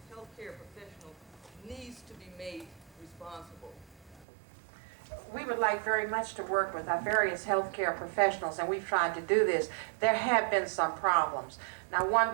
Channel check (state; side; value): drops out; left; at 4.2 s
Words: healthcare professional needs to be made responsible. We would like very much to work with our various healthcare professionals, and we've tried to do this. There have been some problems. Now, one